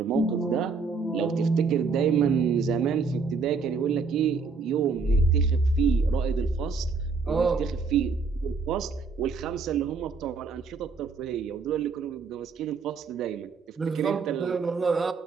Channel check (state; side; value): quieter; left; 4.7 dB